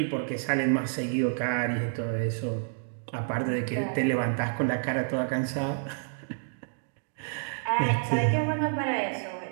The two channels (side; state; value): left; silent; digital silence